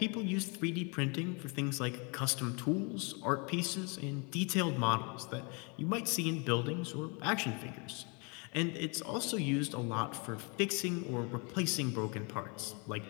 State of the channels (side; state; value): right; quieter; 32.5 dB